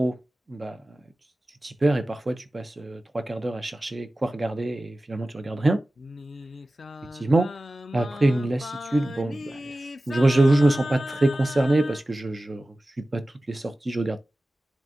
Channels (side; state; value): both; normal; correlation 0.96